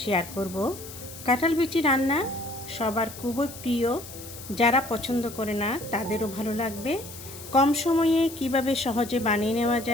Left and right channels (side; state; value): left; noise; hiss, 14 dB below the sound